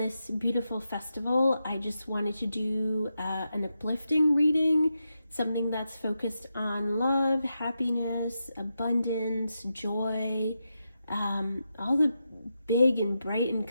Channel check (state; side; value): inverted; both; correlation -0.87